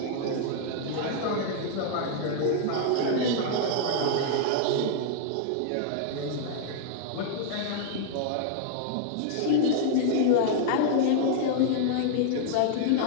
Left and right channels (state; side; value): different; both; correlation -0.01